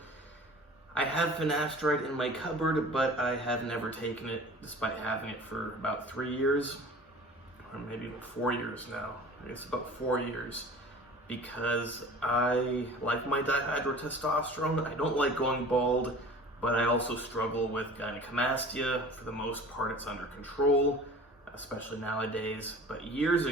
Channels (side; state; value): both; normal; correlation 0.42